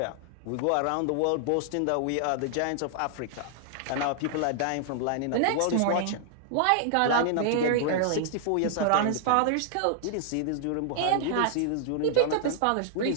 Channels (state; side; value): different; both; correlation -0.01